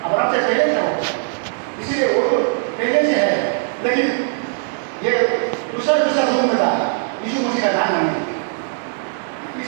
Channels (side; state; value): left; silent; digital silence